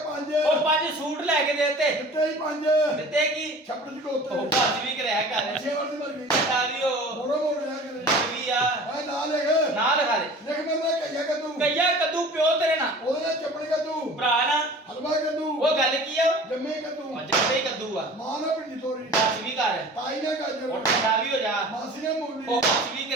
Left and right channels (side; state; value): both; normal; correlation 0.42